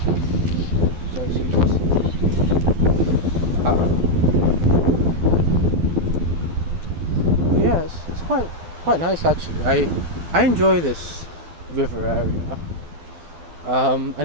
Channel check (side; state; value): left; late; 12 ms